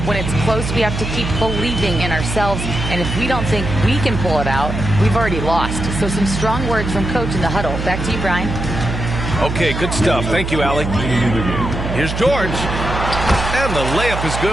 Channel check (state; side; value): noise; right; hum, 4 dB below the sound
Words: when it's close, we have to keep believing in ourselves. And if we don't think we can pull it out, we've already lost. So some strong words from Coach in the huddle. Back to you, Brian. Okay, good stuff. Thank you, Allie. Here's George. And the layup is